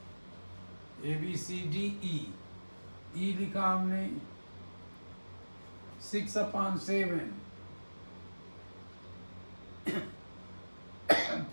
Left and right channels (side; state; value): both; inverted; correlation -1.00